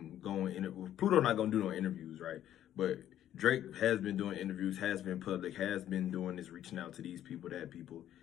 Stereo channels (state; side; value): quieter; right; 11.5 dB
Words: go in. Pluto not gonna do no interviews, right? But Drake has been doing interviews, has been public, has been doing this, reaching out to these people, that people.